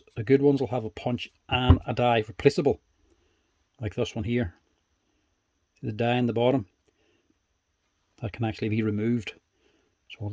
the good ones will have a punch and a die replaceable, like this one here. See the die in the bottom? That can actually be removed. So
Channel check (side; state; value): both; identical; correlation 1.00